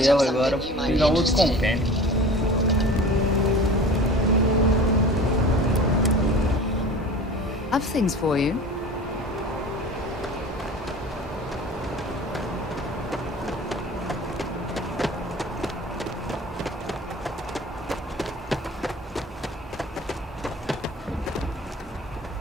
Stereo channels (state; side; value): normal; both; correlation 0.39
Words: agora. Vou pegar outro compêndio. I've things for you.